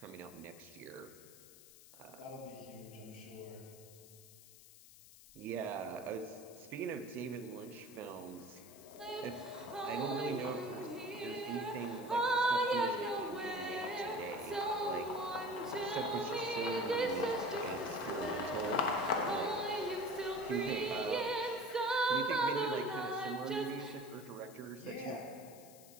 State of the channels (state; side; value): noise; left; hiss, 20 dB below the sound